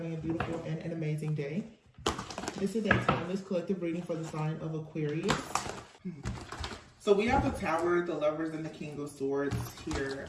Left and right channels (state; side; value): identical; both; correlation 1.00